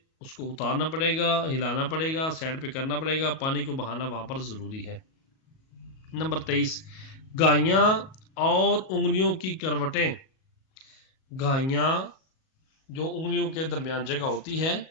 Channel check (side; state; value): right; late; 37 ms